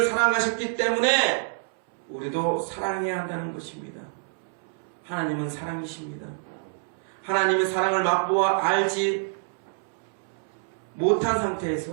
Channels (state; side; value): silent; left; 60 dB below the other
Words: 사랑하셨기 때문에 우리도 사랑해야 한다는 것입니다. 하나님은 사랑이십니다. 하나님의 사랑을 맛보아 알지 못한